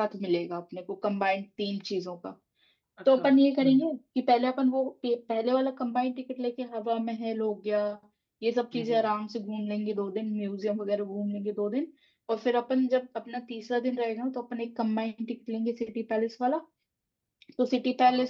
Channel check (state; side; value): identical; both; correlation 1.00